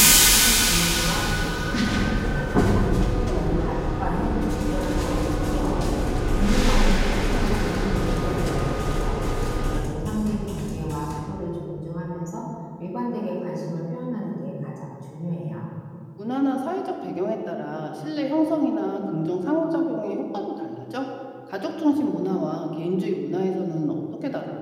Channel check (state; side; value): identical; both; correlation 1.00